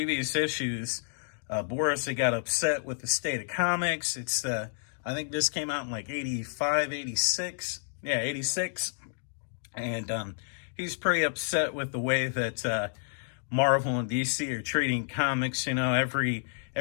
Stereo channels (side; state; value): right; silent; digital silence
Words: issues, Boris had got upset with the state of comics. It's, I think this came out in like 85, 86. Yeah, 86. And he's pretty upset with the way that Marvel and DC are treating comics. Every